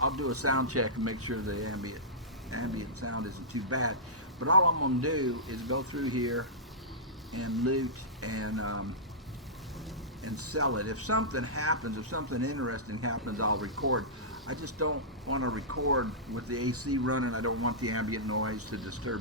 I'll do a sound check and make sure the ambient sound isn't too bad. But all I'm gonna do is go through here and loot and sell it. If something happens, if something interesting happens, I'll record. I just don't want to record with the AC running. I don't want the ambient noise to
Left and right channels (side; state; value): both; normal; correlation -0.16